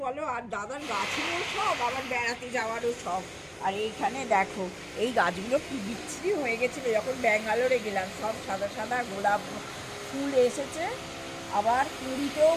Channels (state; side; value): identical; both; correlation 1.00